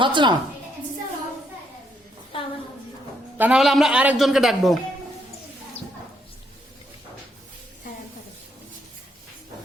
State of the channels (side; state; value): both; normal; correlation 0.74